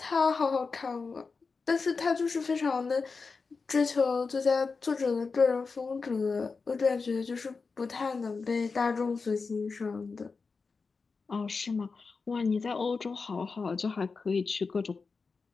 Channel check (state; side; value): quieter; right; 4.6 dB